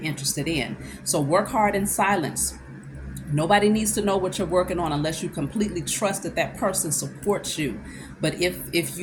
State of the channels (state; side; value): identical; both; correlation 1.00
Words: interested in. So work hard in silence. Nobody needs to know what you're working on unless you completely trust that that person supports you. But if